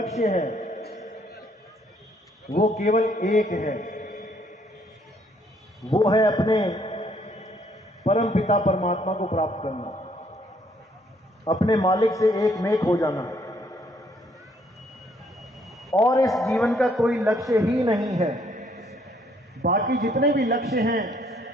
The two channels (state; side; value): normal; both; correlation 0.67